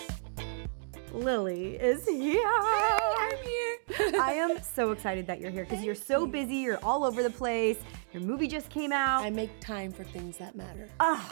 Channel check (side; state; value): left; silent; digital silence